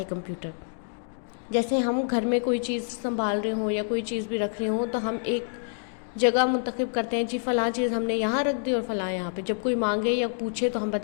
कंप्यूटर। जैसे हम घर में कोई चीज़ संभाल रहे हों या कोई चीज़ भी रख रहे हों तो हम एक जगह मुंतखब करते हैं, जी फ़लाँ चीज़ हमने यहाँ रख दी और फ़लाँ यहाँ पे। जब कोई मांगे या पूछे तो हम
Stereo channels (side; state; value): right; silent; 58 dB below the other